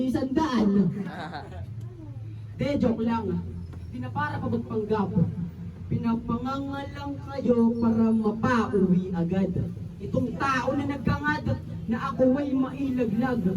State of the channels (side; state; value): both; identical; correlation 1.00